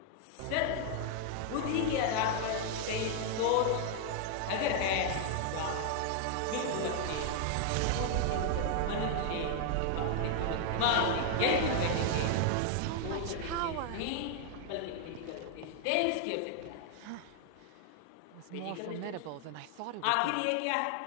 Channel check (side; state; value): both; different; correlation 0.00